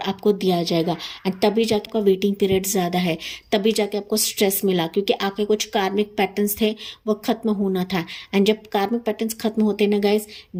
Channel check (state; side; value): identical; both; correlation 1.00